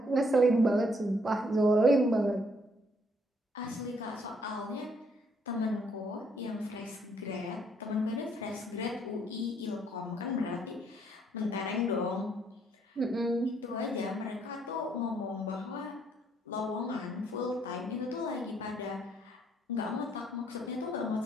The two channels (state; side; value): normal; both; correlation 0.68